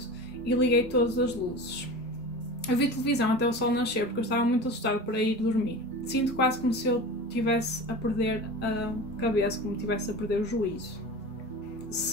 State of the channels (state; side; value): normal; both; correlation 0.32